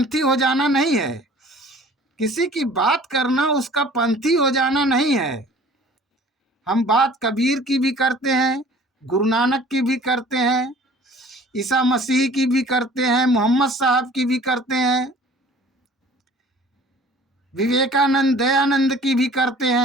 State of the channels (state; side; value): normal; both; correlation 0.49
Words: हो जाना नहीं है। किसी की बात करना उसका पंथी हो जाना नहीं है। हम बात कबीर की भी करते हैं, गुरु नानक की भी करते हैं, ईसा मसीह की भी करते हैं, मोहम्मद साहब की भी करते हैं, विवेकानंद, दयानंद की भी करते